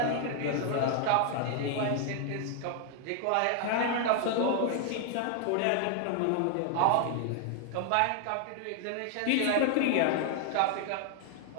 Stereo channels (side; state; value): both; different; correlation 0.00